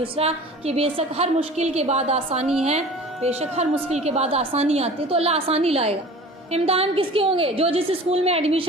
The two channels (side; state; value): both; normal; correlation 0.41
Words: کہ بے شک ہر مشکل کے بعد آسانی ہے، بے شک ہر مشکل کے بعد آسانی آتی ہے، تو اللہ آسانی لائے گا۔ امتحان کس کے ہوں گے؟ جو جس اسکول میں